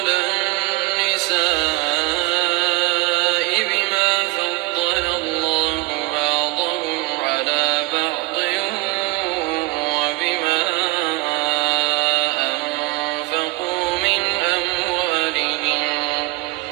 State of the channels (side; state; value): left; quieter; 21.5 dB